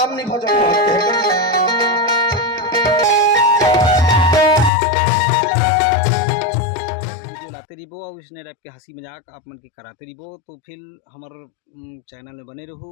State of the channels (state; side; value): drops out; right; at 4.7 s